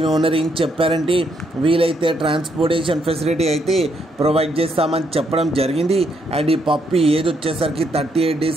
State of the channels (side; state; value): both; normal; correlation 0.75